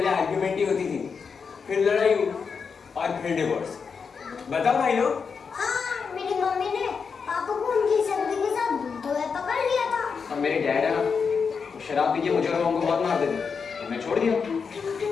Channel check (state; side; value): quieter; right; 5.7 dB